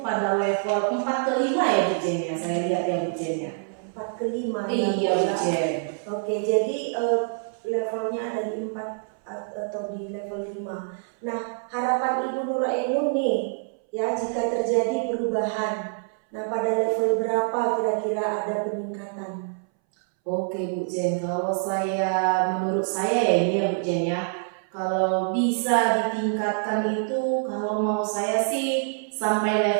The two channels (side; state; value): left; silent; 61 dB below the other